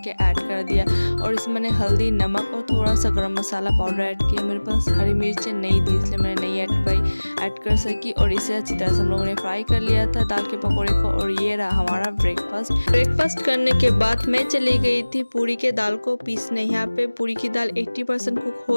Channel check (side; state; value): both; inverted; correlation -1.00